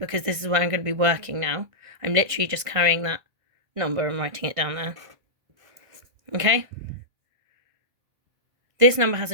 this is where I'm going to be working now. I'm literally just carrying that number and writing it down there. Okay. This number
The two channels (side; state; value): left; late; 1.6 ms